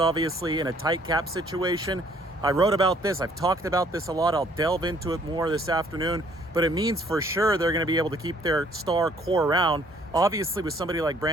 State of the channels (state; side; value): normal; both; correlation 0.61